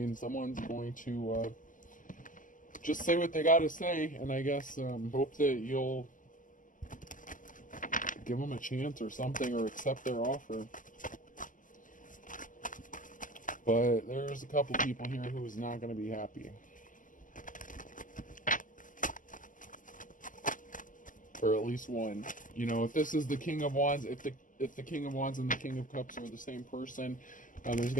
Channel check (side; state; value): right; late; 0.38 ms